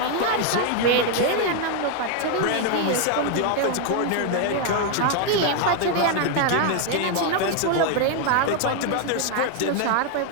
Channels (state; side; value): different; both; correlation 0.01